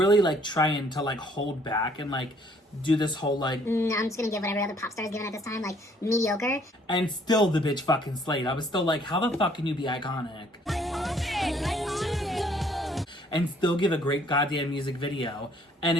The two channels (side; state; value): both; normal; correlation 0.62